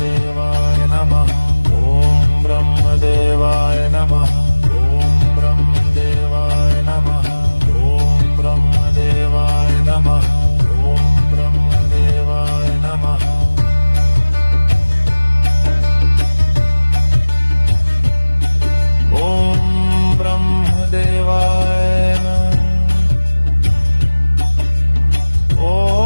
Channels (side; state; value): both; inverted; correlation -1.00